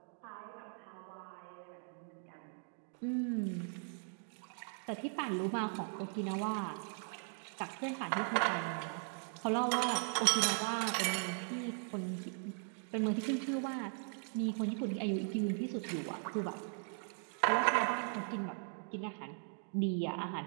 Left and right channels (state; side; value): silent; left; 52 dB below the other